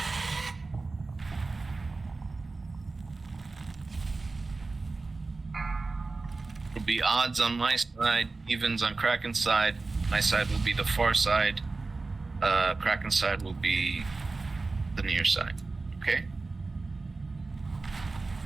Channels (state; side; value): quieter; left; 3.7 dB